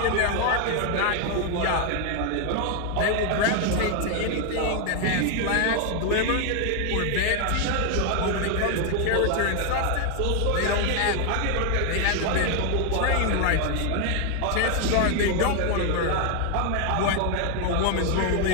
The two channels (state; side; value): different; both; correlation 0.01